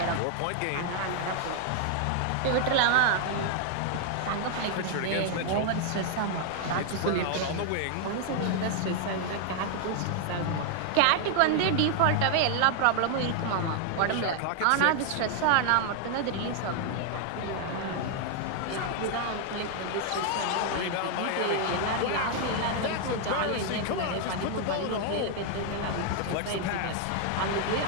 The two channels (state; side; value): different; both; correlation 0.00